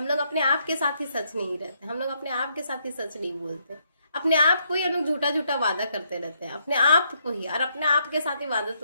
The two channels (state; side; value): inverted; both; correlation -0.75